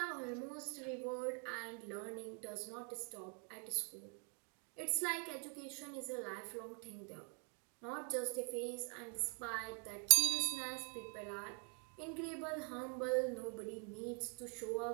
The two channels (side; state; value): left; quieter; 36.8 dB